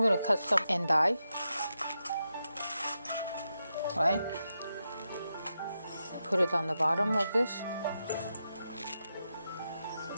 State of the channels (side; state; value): both; inverted; correlation -0.87